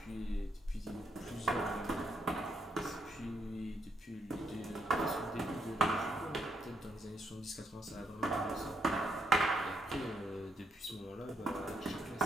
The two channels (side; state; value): both; normal; correlation 0.77